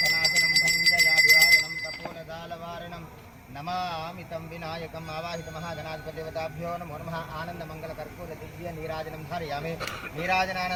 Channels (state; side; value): identical; both; correlation 1.00